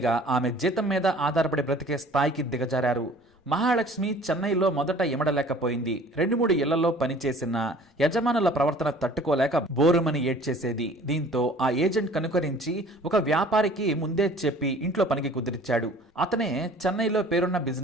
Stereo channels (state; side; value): normal; both; correlation 0.49